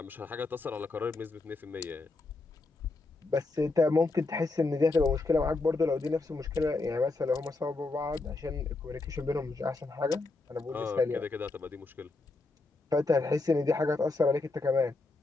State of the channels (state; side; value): quieter; right; 3.4 dB